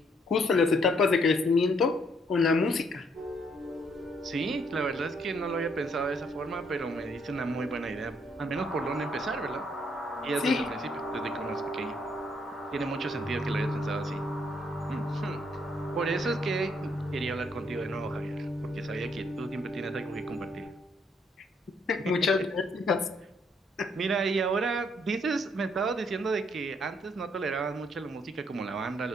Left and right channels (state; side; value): normal; both; correlation 0.70